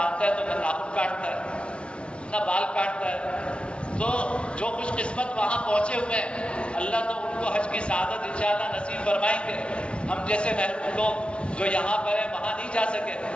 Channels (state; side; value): late; right; 0.059 ms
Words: ہے تو نہ ناخن کاٹتا ہے نہ بال کاٹتا ہے، تو جو خوش قسمت وہاں پہنچے ہوئے ہیں اللہ تو ان کو حج کی سعادت انشاءاللہ نصیب فرمائیں گے۔ ہم جیسے محروم لوگ جو یہاں پر ہیں وہاں نہیں جا سکے،